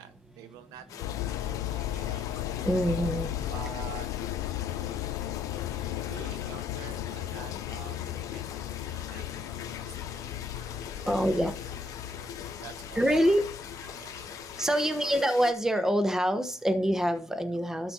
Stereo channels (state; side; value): normal; both; correlation 0.74